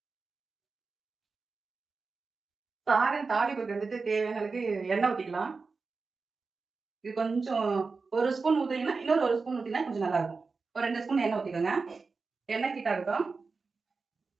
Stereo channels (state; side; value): quieter; left; 4.4 dB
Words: சாதம் தாளிப்புக்கு வந்துட்டு தேவையான அளவுக்கு எண்ணெய் ஊத்திக்கலாம். இது கொஞ்சம் ஒரு ஸ்பூன் ஊத்தினீங்கன்னா இன்னொரு ஒரு ஸ்பூன் ஊத்தினா கொஞ்சம் நல்லா இருக்கும். ஒரு 2 ஸ்பூன் எண்ணெய் ஊத்திக்கோங்க. எண்ணெய் ஹீட் ஆகட்டும்.